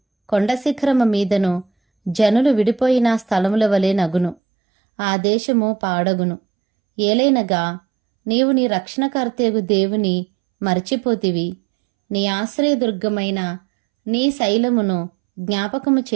కొండ శిఖరము మీదను జనులు విడిపోయిన స్థలముల వలె నగును. ఆ దేశము పాడగును. ఏలైనగా నీవు నీ రక్షణకర్తయగు దేవుని మరచిపోతివి, నీ ఆశ్రయదుర్గమైన నీ శైలమును జ్ఞాపకము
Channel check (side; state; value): left; drops out; at 4.4 s